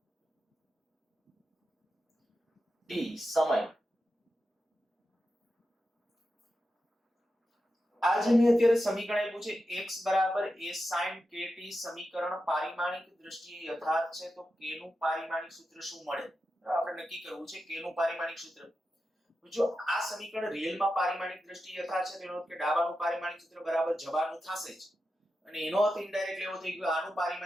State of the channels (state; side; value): normal; both; correlation 0.90